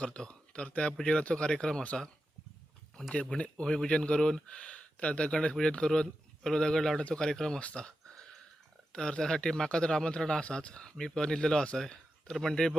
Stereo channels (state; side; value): normal; both; correlation 0.90